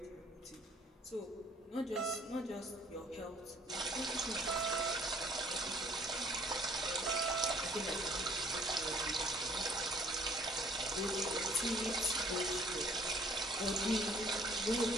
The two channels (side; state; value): both; normal; correlation 0.58